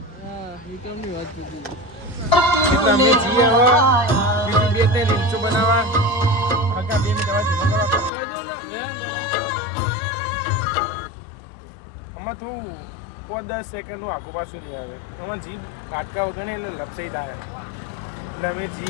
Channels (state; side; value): drops out; right; at 8.1 s